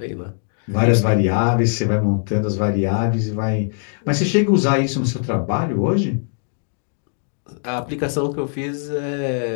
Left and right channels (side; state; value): right; silent; 62 dB below the other